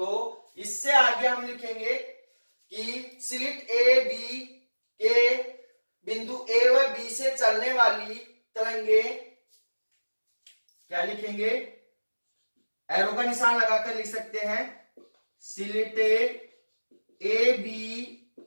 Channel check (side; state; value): both; inverted; correlation -1.00